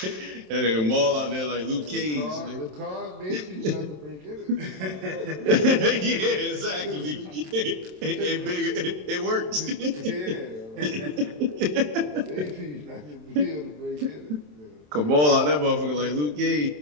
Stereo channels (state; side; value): late; left; 27 ms